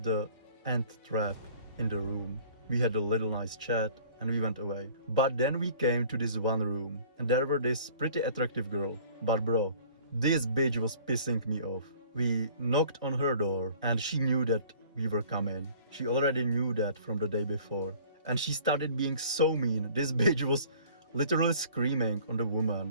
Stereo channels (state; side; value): inverted; both; correlation -0.50